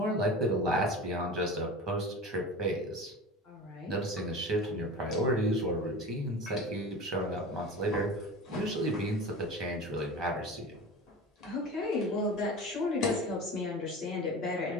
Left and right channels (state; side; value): normal; both; correlation 0.33